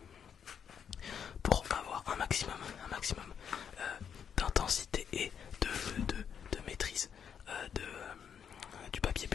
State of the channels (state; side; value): quieter; right; 7.7 dB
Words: Pour avoir un maximum d'intensité et de maîtrise du papier